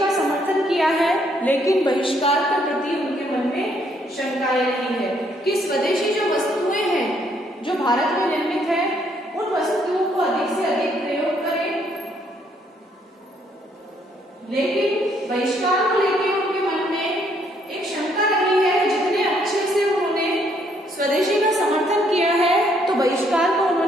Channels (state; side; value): normal; both; correlation 0.69